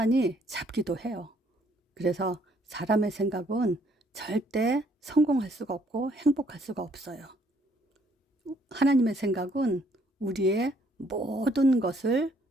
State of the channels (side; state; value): both; normal; correlation 0.66